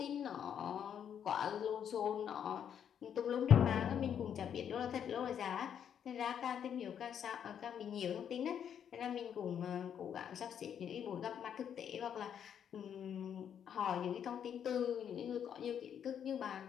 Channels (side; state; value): right; quieter; 8.7 dB